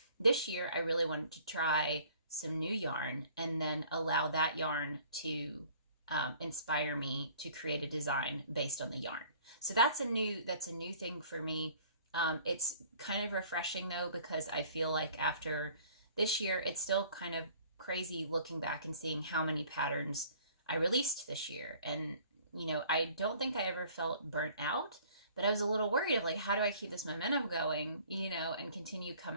This year, I really wanted to try some new yarn and then allow that yarn to inspire me to create a design based on the yarn. So that's a new thing for me. It's kind of refreshing though, because I feel like after this year, it's still kind of crazy looking back and seeing how many patterns I released this year. And, you know, I don't think I ever felt burnt out, but I was a little worried of like, how do I keep this momentum going, you know, and continue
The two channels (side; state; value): both; inverted; correlation -0.53